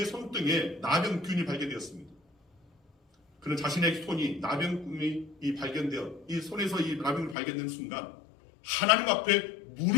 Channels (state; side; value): drops out; right; at 7.4 s